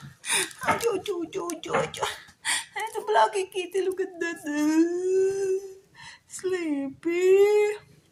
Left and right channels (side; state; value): both; identical; correlation 1.00